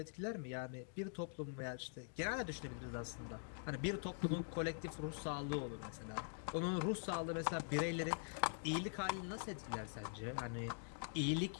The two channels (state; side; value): silent; right; digital silence